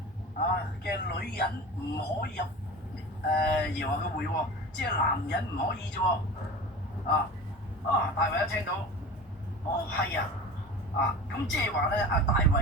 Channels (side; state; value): both; normal; correlation 0.34